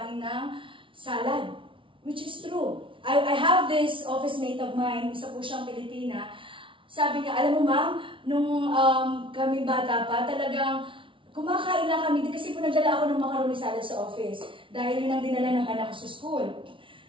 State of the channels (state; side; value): late; left; 0.25 ms